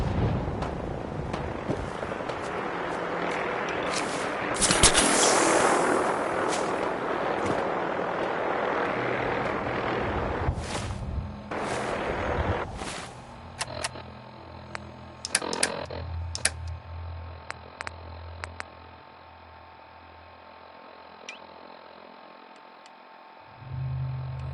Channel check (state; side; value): identical; both; correlation 1.00